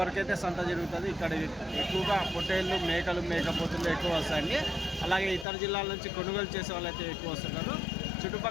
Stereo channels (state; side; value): drops out; right; at 5.5 s